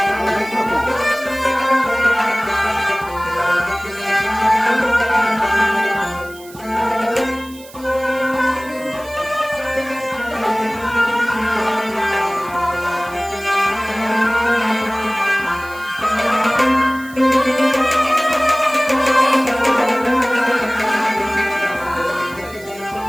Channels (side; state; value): right; noise; hiss, 20 dB below the sound